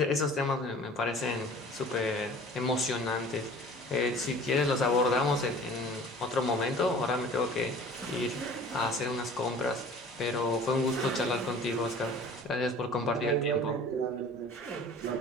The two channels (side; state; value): both; normal; correlation 0.45